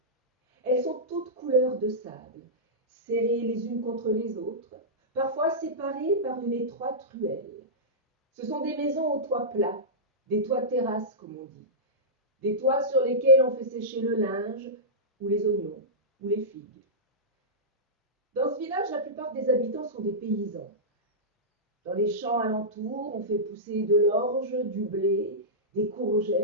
Elles sont toutes couleur de sable, serrées les unes contre les autres, parfois séparées par une étroite ruelle. Ce sont des maisons aux toits plats, des toits terrasses comme on dit, des toits sur lesquels on fait sécher le linge, ou les oignons, ou les figues. Dans ce village, la plupart des habitants sont des paysans. Dans les champs alentours, on fait pousser de l'orge, du blé, des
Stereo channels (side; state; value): both; normal; correlation -0.14